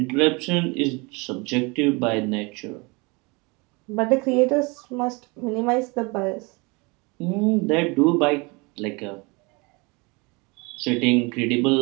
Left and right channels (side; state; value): left; quieter; 27.7 dB